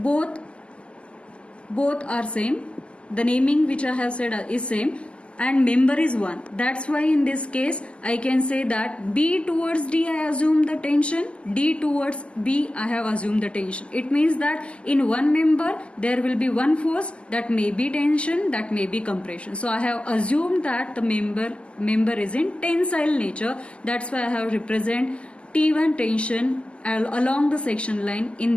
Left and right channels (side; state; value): right; late; 0.054 ms